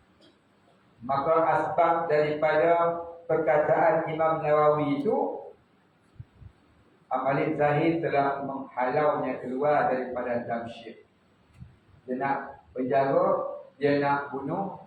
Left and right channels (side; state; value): both; identical; correlation 1.00